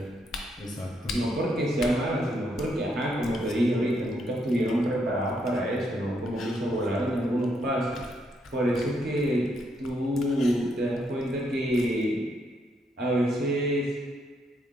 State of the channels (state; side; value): normal; both; correlation 0.76